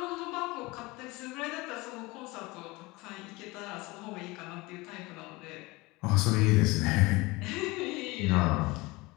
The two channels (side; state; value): right; quieter; 22.8 dB